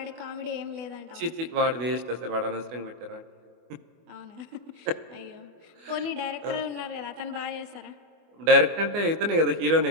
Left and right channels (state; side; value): late; left; 24 ms